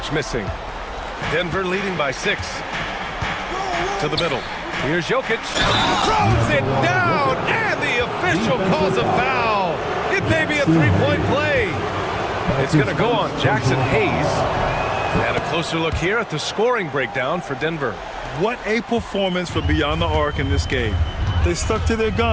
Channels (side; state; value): both; identical; correlation 1.00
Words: missing. Denver leading by 6. To the middle. Here's Jokic. Throws it down. And the official calls a foul. It may be a 3-point play. It's going to go on Jackson Hayes. And a closer look here at the scoring breakdown for Denver. What a performance for Beyond the Arc in this game. They stuck to their